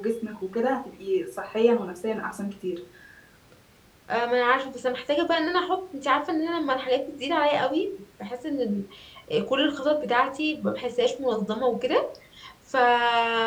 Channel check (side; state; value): both; identical; correlation 1.00